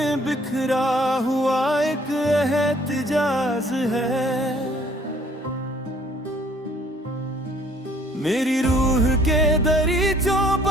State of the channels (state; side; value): normal; both; correlation 0.59